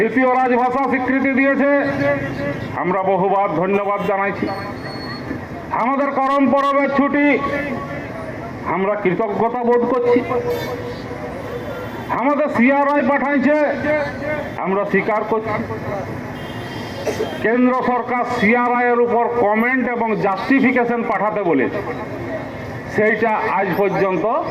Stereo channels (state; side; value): identical; both; correlation 1.00